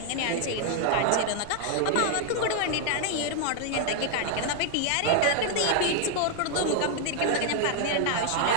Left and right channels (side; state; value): both; different; correlation 0.00